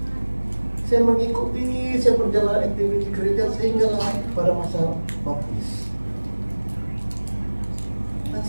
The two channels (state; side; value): inverted; both; correlation -1.00